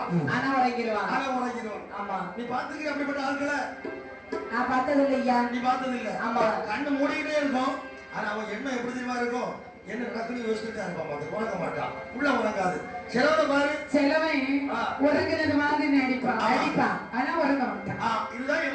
ஆனா உறங்கிடுவான். ஆமா, நீ பாத்துக்கிற அப்படிப்பட்ட ஆட்களை? நான் பார்த்தது இல்லையா. நீ பார்த்தது இல்ல? ஆமா. கண்ணு மூடிக்கிட்டே இருக்கும், ஆனா அவன் என்ன எப்படி தெரியுமா இருக்கும், என்ன நடக்குன்னு யோசிச்சுட்டே இருப்பான், அது உறங்க மாட்டான், உள்ள உறங்காது. சிலவனை பாரு, சிலவன் உறங்குறது மாதிரி நடிப்பான், ஆனா உறங்க மாட்டான். இதுதான்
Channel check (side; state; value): both; identical; correlation 1.00